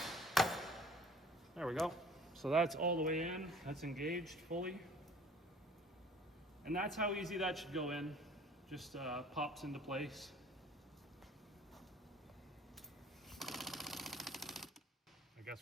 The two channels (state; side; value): normal; both; correlation 0.50